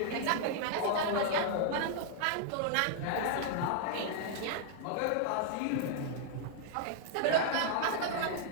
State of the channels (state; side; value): different; both; correlation 0.00